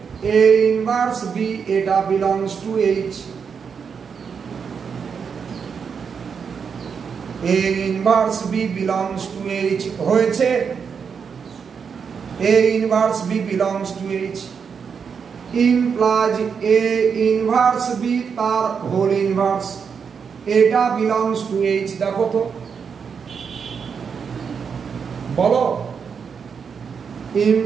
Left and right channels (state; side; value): quieter; left; 6.3 dB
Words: এ ইনভার্স বি এটা belongs to H A inverse B belongs to H হয়েছে A inverse B belongs to H implies A inverse B তার whole inverse এটা belongs to H দেখো তো বলো